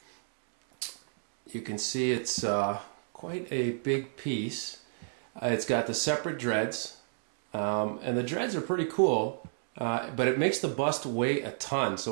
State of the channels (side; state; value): left; silent; 58 dB below the other